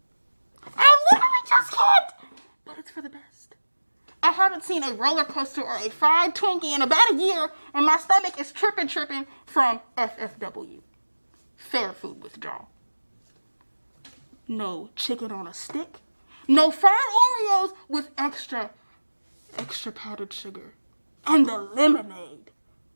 I literally just can't! But it's for the best. I haven't seen a roller coaster or a fried Twinkie in about a year, and my stomach is tripping from FFW. Fair food withdrawal. No chicken on a stick. No fried Oreos with extra powdered sugar. And the lemonade.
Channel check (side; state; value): both; inverted; correlation -1.00